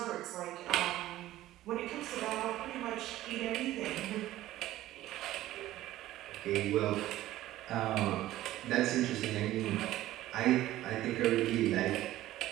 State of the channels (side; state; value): left; quieter; 14.9 dB